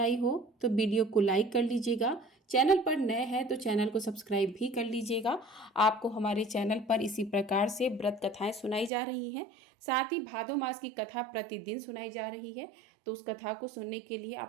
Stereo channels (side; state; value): left; drops out; at 8.9 s